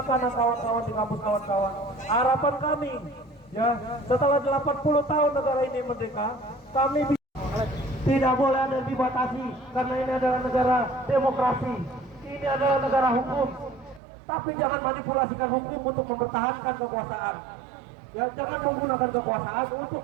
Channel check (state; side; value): drops out; left; at 14.0 s